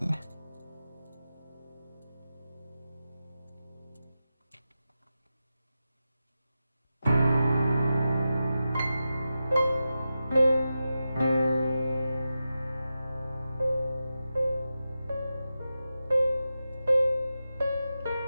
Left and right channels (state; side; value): inverted; both; correlation -0.91